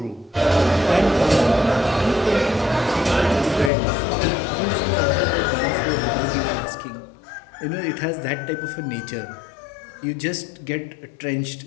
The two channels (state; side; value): drops out; right; at 3.7 s